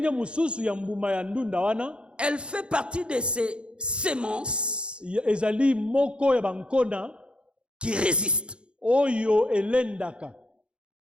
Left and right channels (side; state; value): left; late; 0.056 ms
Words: mususu ya mbuma ya ndunda wana, elle fait partie de ces semences ezali moko ya bankona qui résistent. Oyo elendaka.